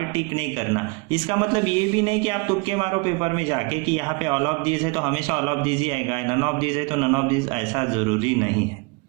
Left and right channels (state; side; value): quieter; left; 28.0 dB